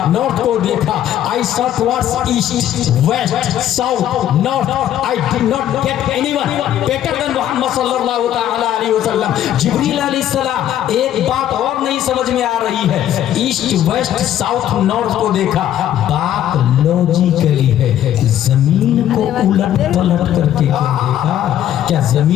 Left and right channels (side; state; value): right; quieter; 11.4 dB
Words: नॉर्थ को देखा। I saw towards east, west, south, north. I did not get anyone better than Muhammad सल्लल्लाहु तआला अलैहि वसल्लम। जिब्रील अलैहिस्सलाम, एक बात और नहीं समझ में आ रही है। ईस्ट, वेस्ट, साउथ, नॉर्थ को देखा, बात लॉजिकली है। जमीन को उलट पलट करके क्या देखा? क्या